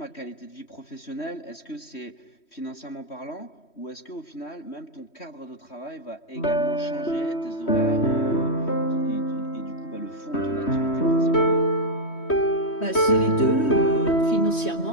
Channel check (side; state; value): right; late; 3.1 ms